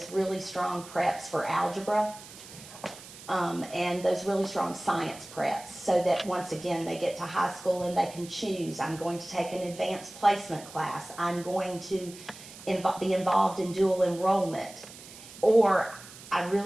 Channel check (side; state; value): right; noise; hiss, 17 dB below the sound